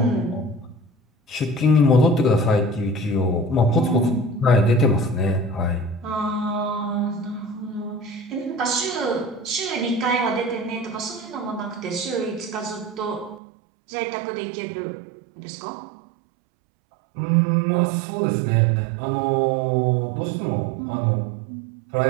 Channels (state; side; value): drops out; left; at 13.4 s